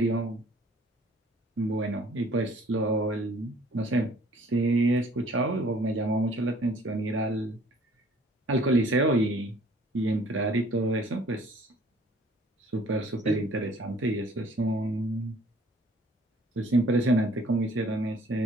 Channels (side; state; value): both; normal; correlation 0.56